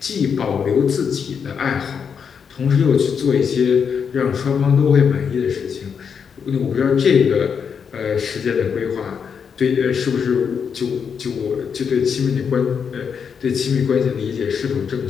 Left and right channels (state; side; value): quieter; right; 6.7 dB